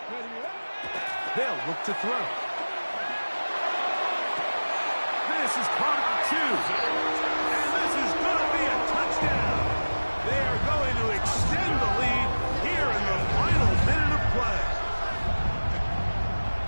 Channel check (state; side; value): inverted; both; correlation -1.00